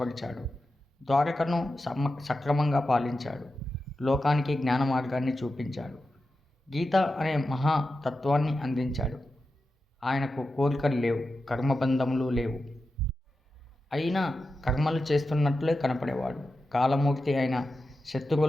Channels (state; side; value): normal; both; correlation 0.91